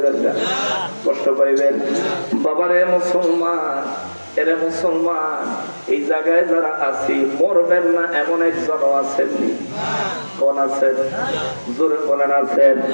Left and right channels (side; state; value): both; inverted; correlation -1.00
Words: না, কষ্ট পাইবেন। বাবারে মুসলমান, এরে মুসলমান, এই জায়গায় যারা আছি মরবেন না এমন একজন আছেননি? কোন আছেন? জোরে বলেন আছেন?